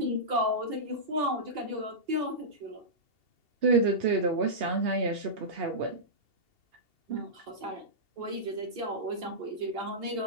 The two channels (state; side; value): late; left; 2.8 ms